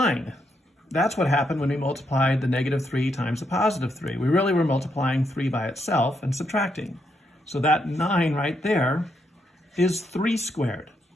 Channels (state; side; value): normal; both; correlation 0.78